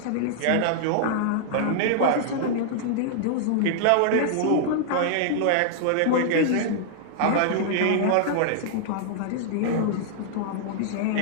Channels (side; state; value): both; different; correlation -0.01